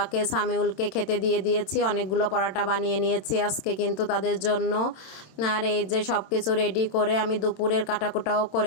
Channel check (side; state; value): right; late; 27 ms